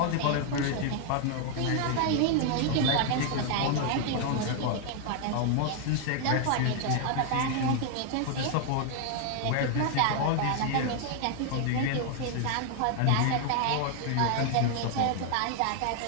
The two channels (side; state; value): both; different; correlation 0.00